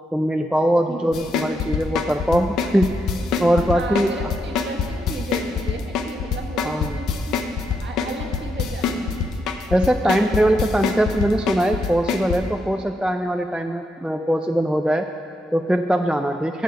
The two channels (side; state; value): both; normal; correlation 0.81